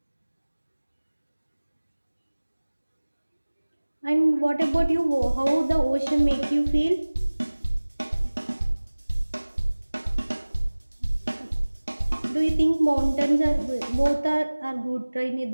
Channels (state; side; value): inverted; both; correlation -1.00